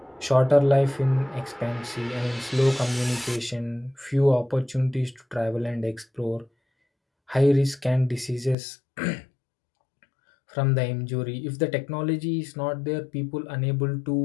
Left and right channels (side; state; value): right; drops out; at 8.6 s